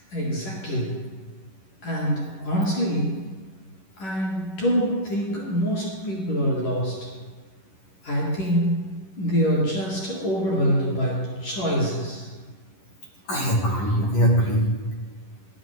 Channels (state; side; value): late; right; 11 ms